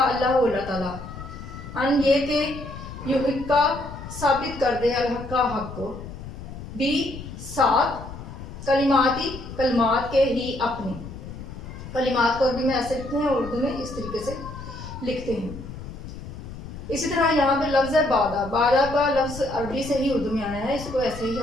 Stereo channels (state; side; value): noise; left; rumble, 11 dB below the sound